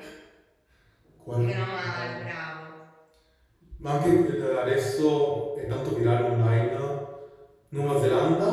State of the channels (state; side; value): identical; both; correlation 1.00